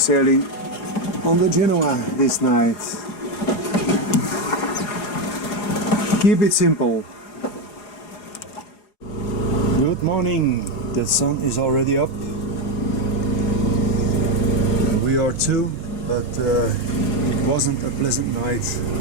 on the Genoa this night. Keep it simple. Good morning. The sun is already up. We are too, but it wasn't a pleasant night.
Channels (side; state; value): right; late; 4.8 ms